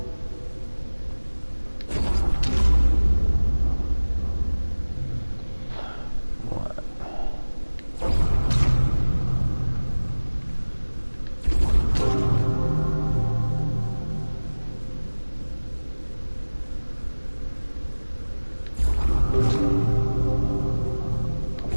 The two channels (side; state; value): both; inverted; correlation -1.00